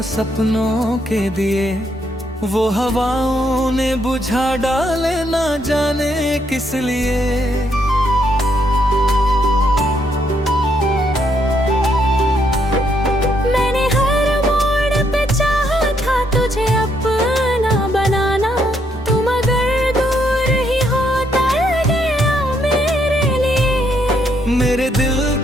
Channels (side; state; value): both; normal; correlation 0.74